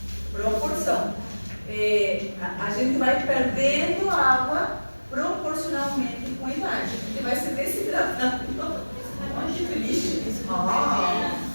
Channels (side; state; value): both; inverted; correlation -1.00